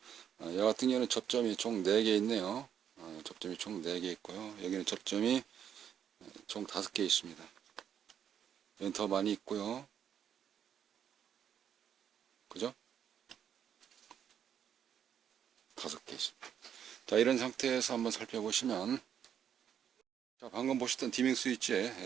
이 같은 경우는 접점이 총 4개 있네요. 접점이 총 4개 있고요. 여기는 접점이 총 5개 있습니다. 여기는 더 많이 있고요. 그죠? 5개 있습니다. 자, 이런 상태에서 한번 살펴보시면, 자, 방금 보셨던 디밍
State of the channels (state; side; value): quieter; left; 8.9 dB